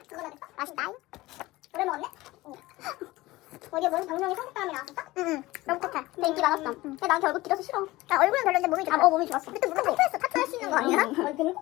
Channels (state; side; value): quieter; right; 19.0 dB